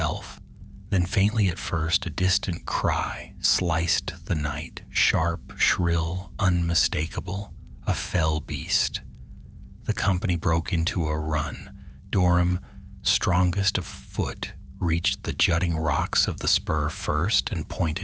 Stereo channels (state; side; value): identical; both; correlation 1.00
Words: Then faintly at first, a distant cry sliced the night, sharp, shrill, unmistakable, a fell beast. The company broke into a run. Dorum, strongest of foot, reached the jutting rocks of the spur first and